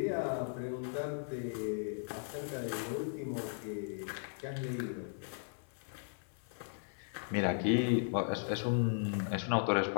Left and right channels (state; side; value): silent; right; 53 dB below the other